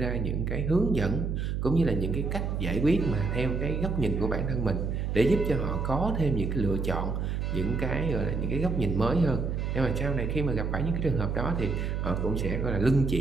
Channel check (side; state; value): right; noise; hum, 1 dB below the sound